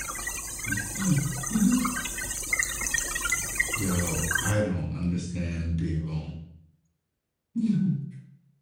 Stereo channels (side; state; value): both; identical; correlation 1.00